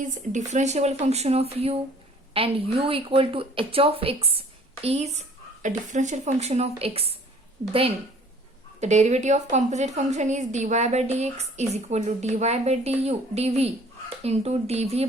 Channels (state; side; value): normal; both; correlation 0.54